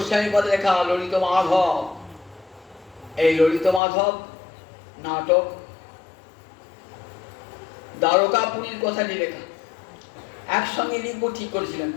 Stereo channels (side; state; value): right; drops out; at 3.8 s